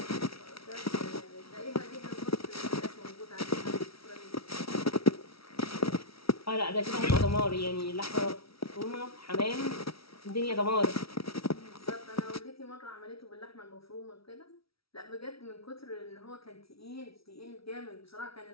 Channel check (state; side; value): late; right; 0.75 ms